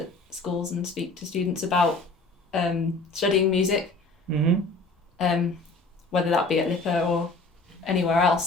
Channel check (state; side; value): quieter; right; 3.2 dB